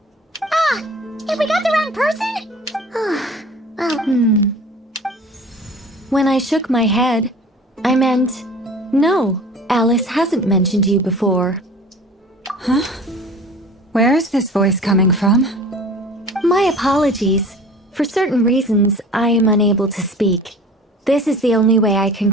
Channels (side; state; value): both; normal; correlation 0.43